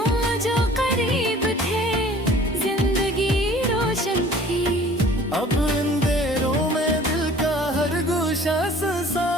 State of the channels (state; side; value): normal; both; correlation 0.50